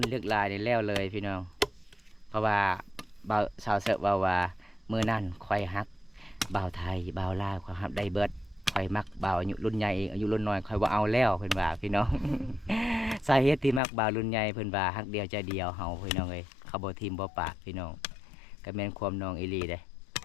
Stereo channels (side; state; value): right; drops out; at 13.8 s